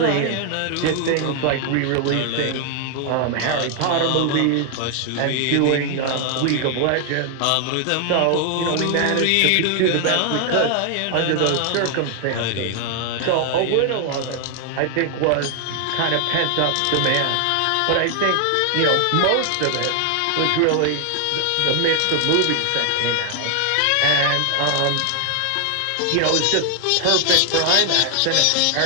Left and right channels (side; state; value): both; different; correlation 0.00